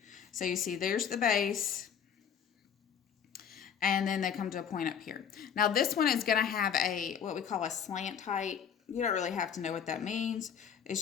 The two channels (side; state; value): right; quieter; 7.9 dB